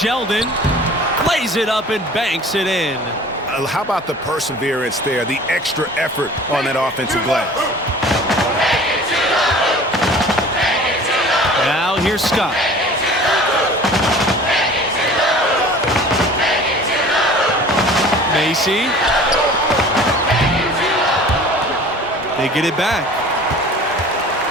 Plays it up and banks it in. How about the perseverance there, the extra effort on that offensive glass? Now here's Scott. Macy. They get it back.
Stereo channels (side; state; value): both; normal; correlation 0.45